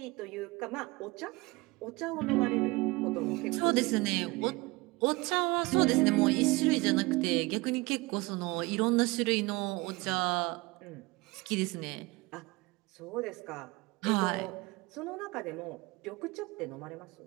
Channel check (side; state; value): left; quieter; 22.8 dB